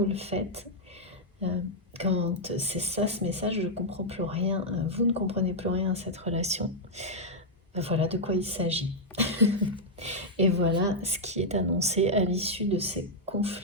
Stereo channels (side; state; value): both; normal; correlation -0.04